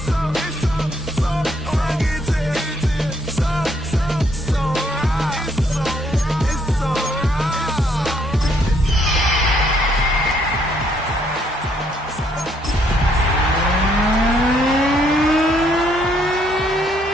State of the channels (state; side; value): normal; both; correlation 0.70